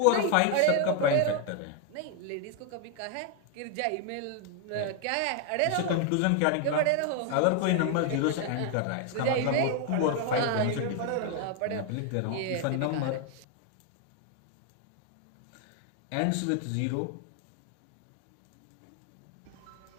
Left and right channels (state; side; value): different; both; correlation 0.01